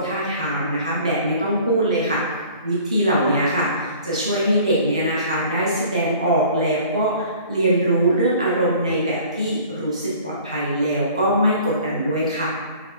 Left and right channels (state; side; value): inverted; both; correlation -0.49